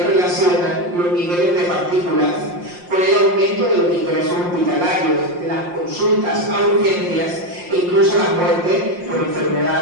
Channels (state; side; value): late; left; 5.7 ms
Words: relacionan los niveles de partículas con el aumento de los ingresos hospitalarios, de las consultas a urgencias e incluso la muerte por